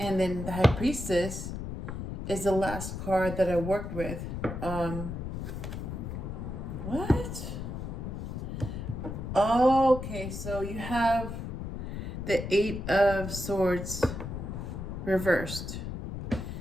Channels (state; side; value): noise; left; rumble, 6 dB below the sound